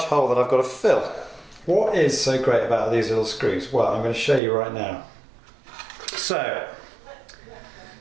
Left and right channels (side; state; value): left; drops out; at 4.4 s